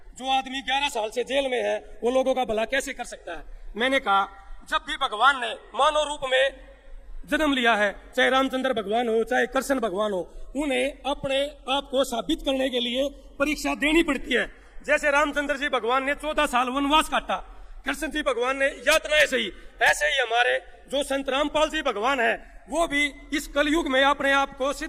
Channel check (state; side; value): identical; both; correlation 1.00